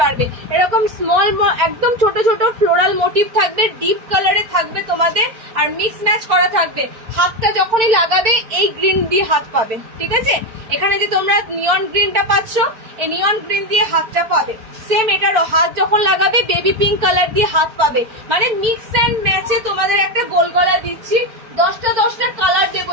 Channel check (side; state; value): left; late; 4.4 ms